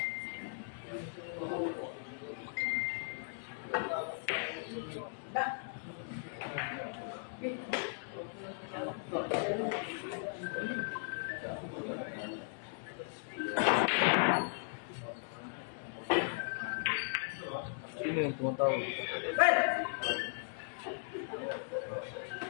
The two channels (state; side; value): silent; right; digital silence